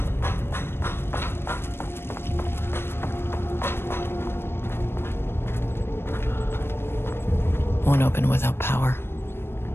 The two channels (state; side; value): late; right; 0.12 ms